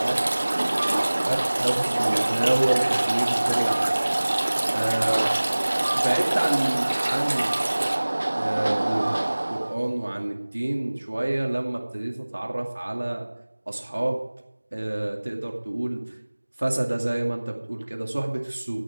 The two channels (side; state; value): both; inverted; correlation -1.00